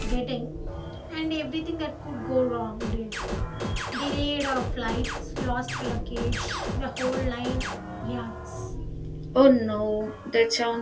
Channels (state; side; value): identical; both; correlation 1.00